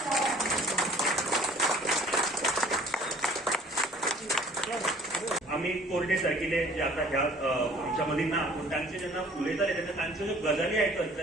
आम्ही कोरडे सारखिले जे आता ह्या आमच्या मधील ना त्यांचे जेन्ना उलयताले तेन्ना तांच्यो ज्यो गजाली आयकत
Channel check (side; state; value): both; normal; correlation 0.52